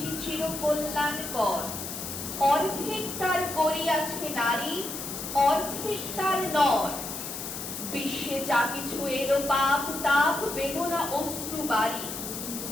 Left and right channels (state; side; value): noise; left; hiss, 7 dB below the sound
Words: চির কল্যাণকর, অর্ধেক তার করিয়াছে নারী, অর্ধেক তার নর। বিশ্বে যা কিছু এলো পাপ তাপ বেদনা অশ্রু বাড়ি,